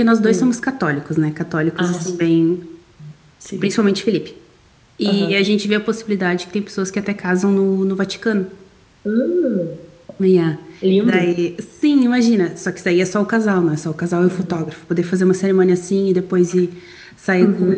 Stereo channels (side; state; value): both; identical; correlation 1.00